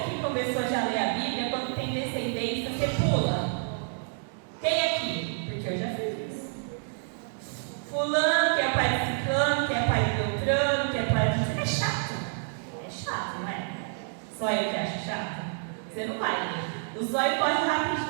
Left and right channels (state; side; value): silent; left; digital silence